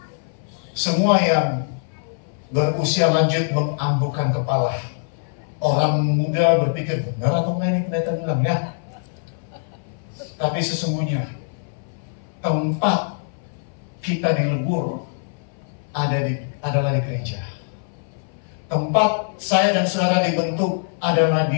Semua yang berusia lanjut menganggukkan kepala. Orang muda berpikir, benar atau enggak ini pendeta bilang ya? Tapi sesungguhnya tempat kita dilebur adalah di gereja. Tempat saya dan saudara dibentuk adalah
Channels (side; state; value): right; silent; 59 dB below the other